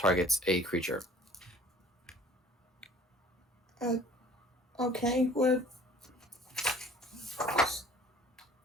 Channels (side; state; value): both; normal; correlation 0.50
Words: a creature. Okay, what?